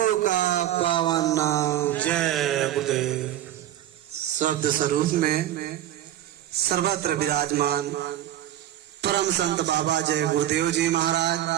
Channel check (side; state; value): left; quieter; 12.4 dB